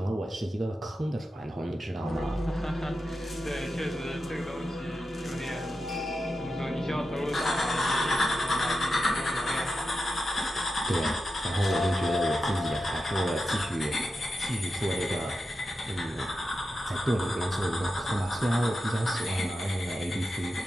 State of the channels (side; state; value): both; normal; correlation 0.90